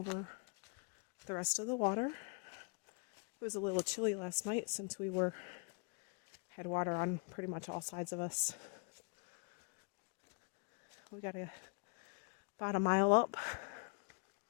the rest of the water. It was a little chilly last night since we had water on pretty much all sides of us. We got about a mile up,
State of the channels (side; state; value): right; quieter; 35.9 dB